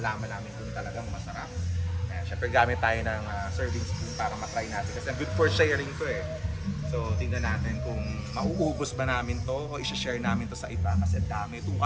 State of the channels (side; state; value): both; identical; correlation 1.00